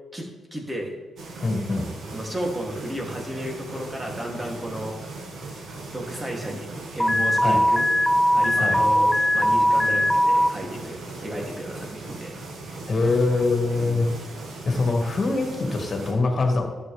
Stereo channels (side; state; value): both; normal; correlation 0.94